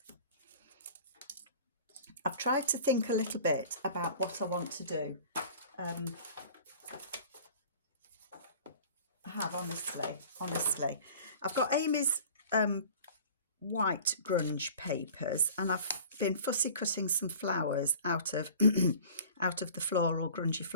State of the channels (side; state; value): both; inverted; correlation -0.45